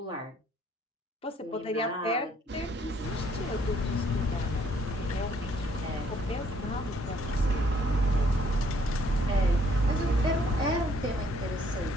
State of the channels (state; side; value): normal; both; correlation 0.65